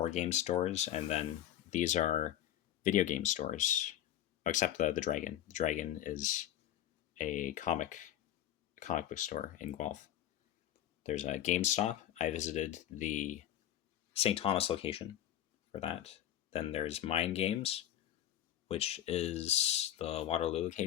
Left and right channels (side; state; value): right; quieter; 12.1 dB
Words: game stores, and then these are video game stores, except the Dragon. The Dragon is a comic book store in Guelph. There's a GameStop. I visited the St. Thomas location for that. Then there's Mind Games, which is the Waterloo